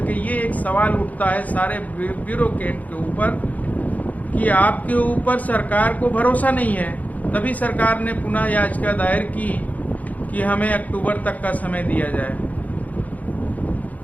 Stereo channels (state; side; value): late; right; 0.076 ms